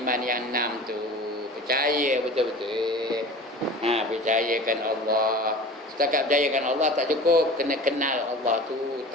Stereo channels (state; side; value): normal; both; correlation 0.37